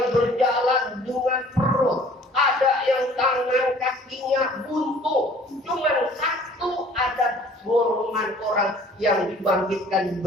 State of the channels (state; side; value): normal; both; correlation 0.52